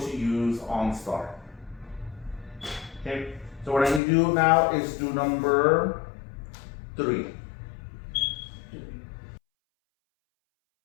use OnStar. Okay, so what I need to do now is do number 3.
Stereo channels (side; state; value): right; drops out; at 4.0 s